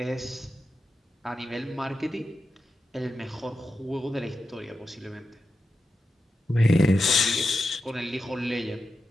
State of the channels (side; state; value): both; normal; correlation 0.90